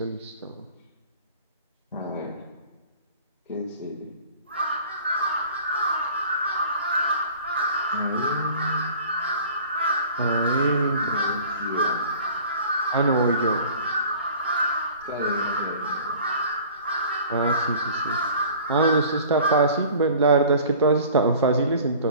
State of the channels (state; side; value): inverted; both; correlation -0.46